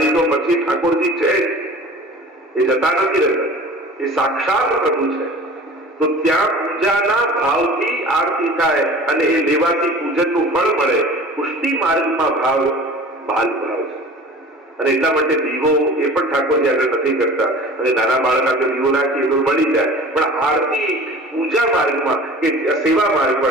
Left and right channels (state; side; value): normal; both; correlation 0.42